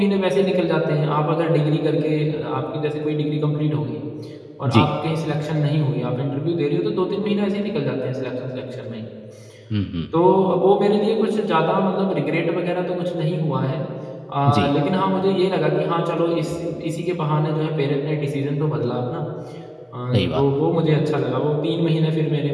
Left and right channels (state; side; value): identical; both; correlation 1.00